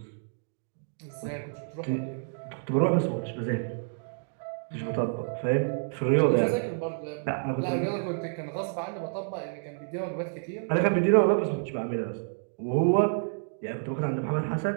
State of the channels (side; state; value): left; silent; digital silence